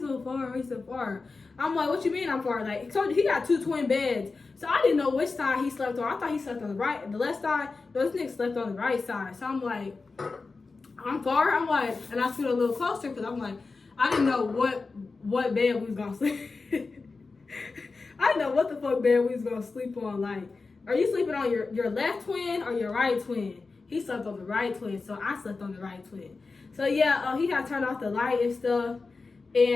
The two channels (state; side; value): quieter; right; 4.1 dB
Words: far? Why you so far? I'm like, what you mean I'm far? Like, so he got 2 twin beds. So I didn't know which side he slept on. I thought he slept on the left side. No, this nigga slept on the right side. So I'm like, I'm far. I'm like, and I stood a little closer because I'm like, I didn't know what bed we was gonna sleep. I didn't know what the fuck bed we was gonna sleep on. Like, are you sleeping on your left twin or your right twin? He slept on the right twin, so I slept on the right twin. So yeah, he got turned off the light and stuff,